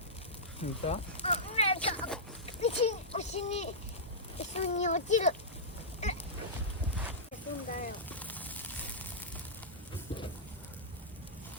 見た？なんか牛に落ちる。飛んだよ。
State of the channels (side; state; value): both; normal; correlation -0.14